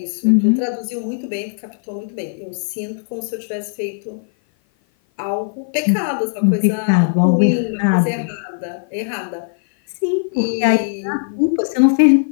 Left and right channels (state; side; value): silent; right; 56 dB below the other